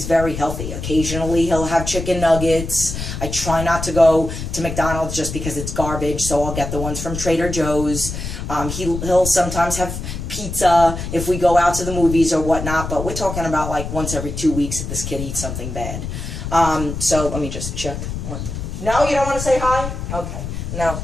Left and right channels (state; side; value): noise; left; rumble, 6 dB below the sound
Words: very healthy. Occasionally he'll have chicken nuggets. I try not to go to McDonald's just because it's garbage. So I'll get the ones from Trader Joe's. He'll sometimes have pizza if we go out to the movies or whatnot. But we're talking about like once every 2 weeks that this kid eats something bad. So let me just check. No, you don't want to say hi? Okay. No,